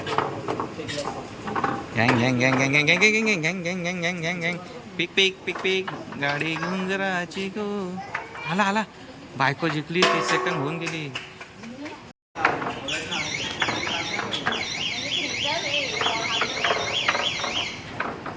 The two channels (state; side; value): identical; both; correlation 1.00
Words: गँग. पिक गाडी घेऊन जराची गो. आला बायको जिंकली. 30 सेकंड होऊन गेली.